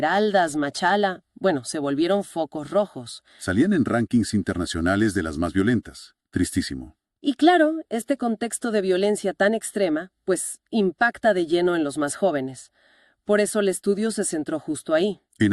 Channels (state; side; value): identical; both; correlation 1.00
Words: Machala, se volvieron focos rojos. Salían en rankings internacionales de las más violentas. Tristísimo. Y claro, este contexto de violencia tan extrema, impacta de lleno en los más jóvenes. Por eso el estudio se centró justo ahí. En